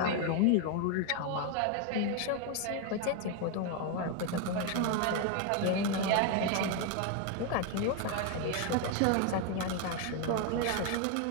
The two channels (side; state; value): both; different; correlation 0.01